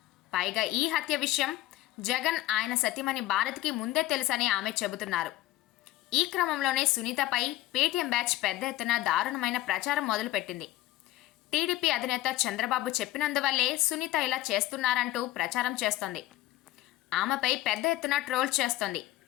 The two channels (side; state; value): right; quieter; 15.6 dB